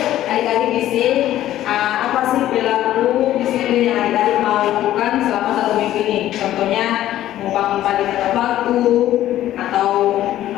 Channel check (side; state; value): right; quieter; 13.2 dB